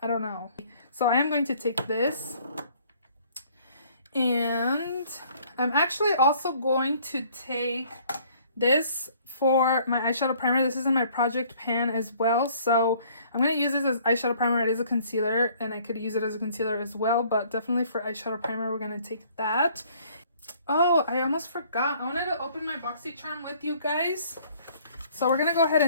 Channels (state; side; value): inverted; both; correlation -0.58